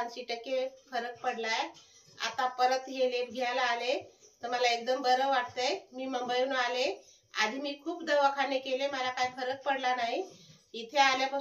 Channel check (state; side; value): identical; both; correlation 1.00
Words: फरक पडलाय। आता परत हे लेप घ्यायला आले तर मला एकदम बरं वाटतंय। मी मुंबईहून आले, आधी मी खूप दवाखाने केले, मला काही फरक पडला नाही। इथे